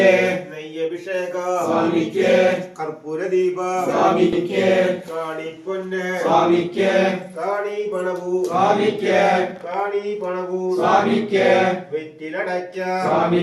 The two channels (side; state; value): both; identical; correlation 1.00